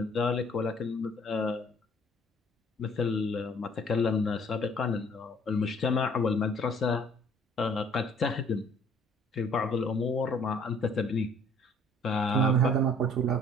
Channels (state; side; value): normal; both; correlation 0.56